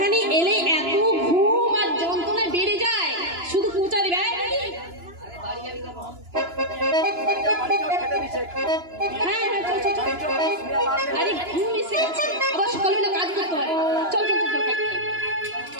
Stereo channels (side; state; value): left; late; 2.9 ms